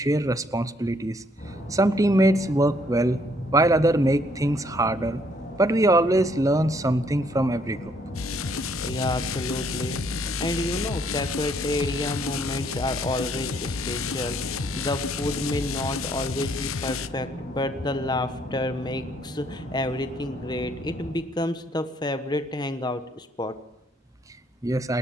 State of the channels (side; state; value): both; normal; correlation 0.67